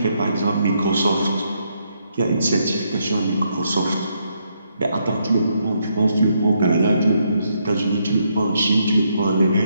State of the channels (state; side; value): inverted; both; correlation -0.76